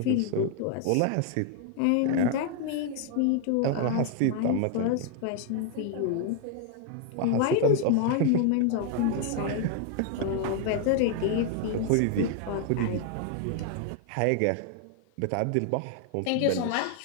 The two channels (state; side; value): different; both; correlation 0.00